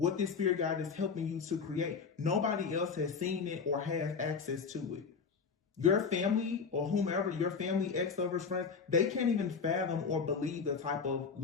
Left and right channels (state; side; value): quieter; right; 5.6 dB